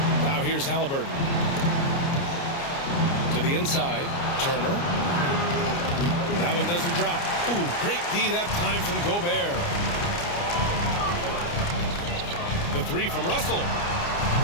Now here's Haliburton. To the inside, Turner. That one doesn't drop. Ooh, great D that time from Gobert. The three from Russell.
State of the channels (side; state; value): right; late; 29 ms